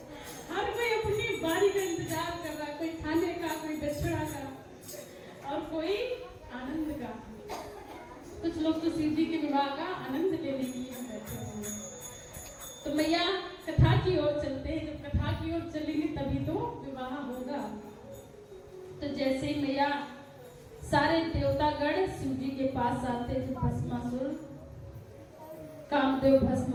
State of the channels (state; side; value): identical; both; correlation 1.00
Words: हर कोई अपनी बारी का इंतजार कर रहा है, कोई खाने का, कोई दक्षिणा का और कोई आनंद का। कुछ लोग तो शिव जी के विवाह का आनंद लेने के लिए बैठे हुए हैं। तो मैया कथा की ओर चलते हैं, जब कथा की ओर चलेंगे तभी तो विवाह होगा। तो जैसे ही मैया सारे देवतागण शिव जी के पास आते, जो भस्मासुर कामदेव भस्म